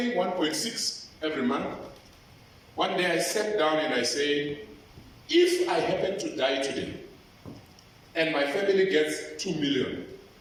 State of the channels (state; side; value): identical; both; correlation 1.00